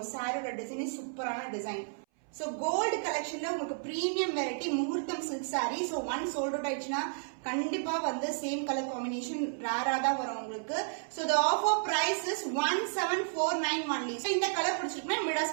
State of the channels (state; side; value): silent; left; 56 dB below the other